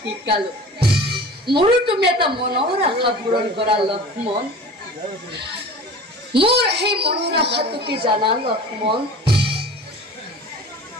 মোৰো তুমি এটা মনৰ আশা পূৰণ কৰা লক্ষ্মণ। মোৰ সেই মনৰ আশাটো কি জানা লক্ষ্মণ?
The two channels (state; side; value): normal; both; correlation 0.39